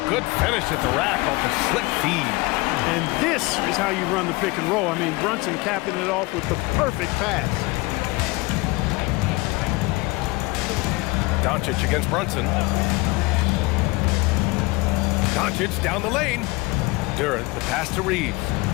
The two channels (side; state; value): right; quieter; 23.5 dB